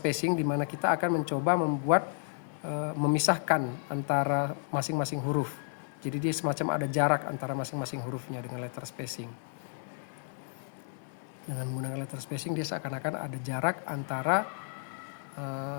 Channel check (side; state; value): right; silent; digital silence